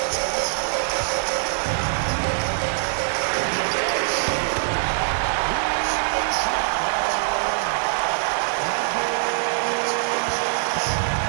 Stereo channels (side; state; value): left; silent; 59 dB below the other